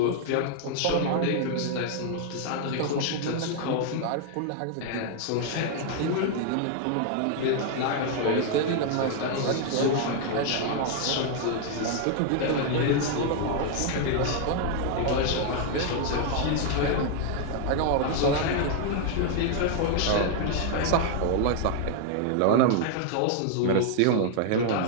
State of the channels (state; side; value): different; both; correlation 0.00